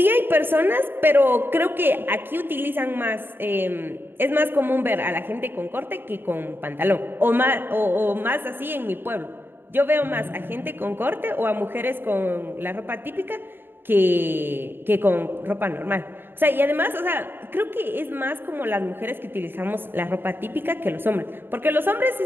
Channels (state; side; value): late; left; 0.10 ms